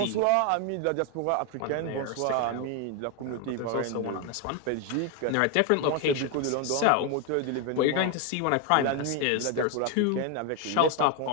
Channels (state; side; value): different; both; correlation 0.01